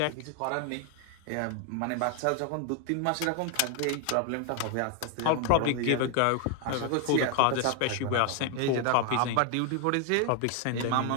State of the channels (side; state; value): both; different; correlation 0.00